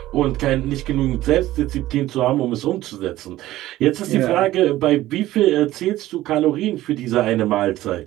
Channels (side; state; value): left; quieter; 15.5 dB